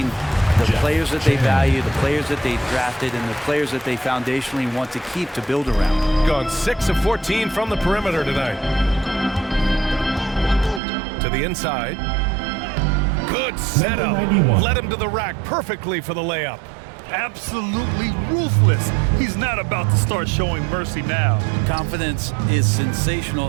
the players that they value, the players that they drafted, and the players that they foundationally want to keep to build around. Gone 6 of 14 from the perimeter tonight. To the inside. Good setup. Led him to the rack perfectly for the layup. Absolutely ruthless. He's not about to start showing mercy now. Confidence is sensational,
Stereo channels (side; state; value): left; drops out; at 10.8 s